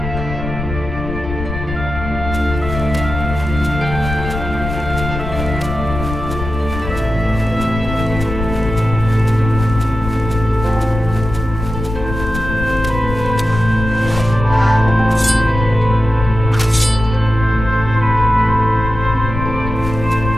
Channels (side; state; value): left; noise; rumble, 7 dB below the sound